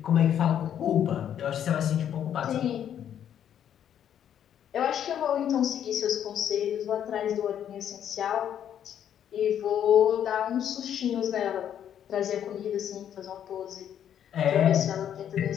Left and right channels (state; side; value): quieter; right; 9.7 dB